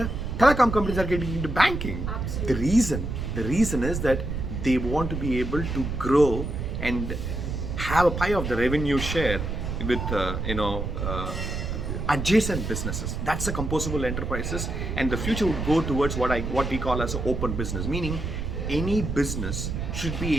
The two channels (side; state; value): right; noise; rumble, 3 dB below the sound